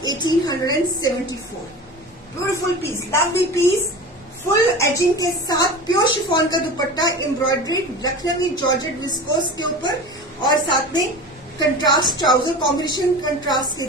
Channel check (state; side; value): normal; both; correlation 0.33